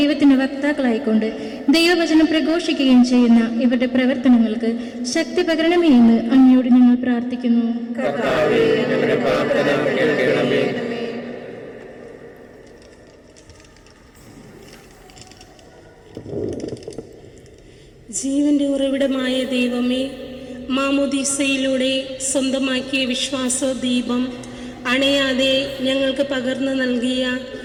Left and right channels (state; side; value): identical; both; correlation 1.00